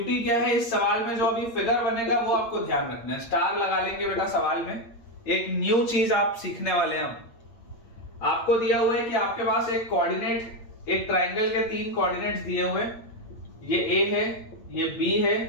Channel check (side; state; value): right; late; 8.7 ms